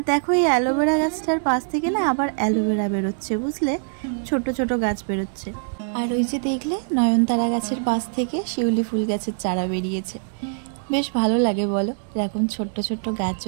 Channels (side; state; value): left; silent; digital silence